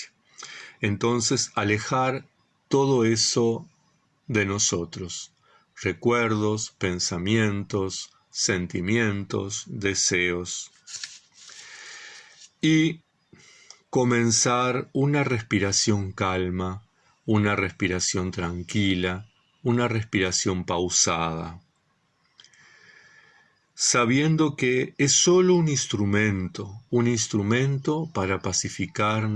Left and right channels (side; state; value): both; identical; correlation 1.00